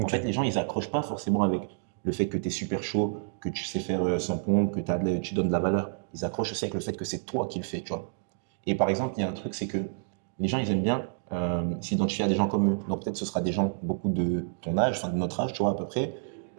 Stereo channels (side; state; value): left; silent; digital silence